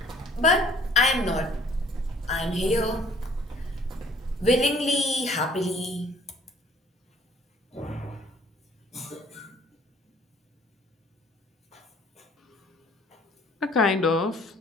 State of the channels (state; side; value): normal; both; correlation 0.57